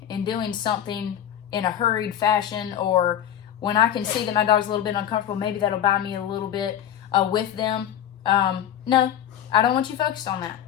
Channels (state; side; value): quieter; right; 10.3 dB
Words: in doing something in a hurried fashion, or when I can see that my dog's a little bit uncomfortable, maybe that'll buy me a little bit with them. No, I don't want you focused on that.